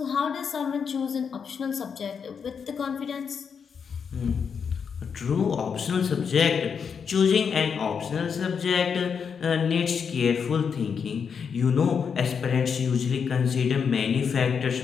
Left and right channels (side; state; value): right; quieter; 6.5 dB